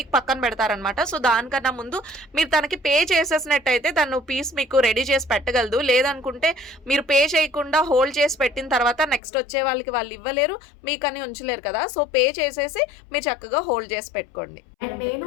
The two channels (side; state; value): right; drops out; at 9.2 s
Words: పక్కన పెడతారనమాట. సో దానికన్నా ముందు మీరు తనకి పే చేసేసినట్టయితే తను పీస్ మీకు రెడీ చేసి పెట్టగలదు. లేదనుకుంటే మీరు పే చేయకుండా హోల్డ్ చేసి పెట్టిన తర్వాత నెక్స్ట్ వచ్చే వాళ్ళకి వాళ్ళు ఇవ్వలేరు, మీకని ఉంచలేరు కదా. సో పే చేసేసి మీరు చక్కగా హోల్డ్ చేసి పెట్టుకోండి. అండ్ నేను